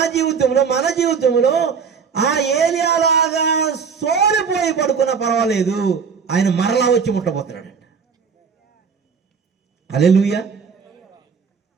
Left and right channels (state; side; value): quieter; left; 6.0 dB